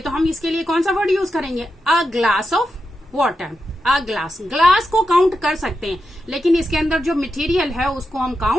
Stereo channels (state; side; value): normal; both; correlation 0.88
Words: तो हम इसके लिए कौन सा वर्ड यूज करेंगे, a glass of water. A glass, glass को काउंट कर सकते हैं, लेकिन इसके अंदर जो मटेरियल है उसको हम